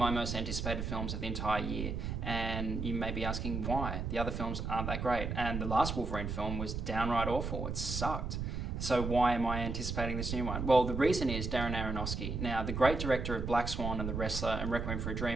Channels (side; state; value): right; noise; rumble, 3 dB below the sound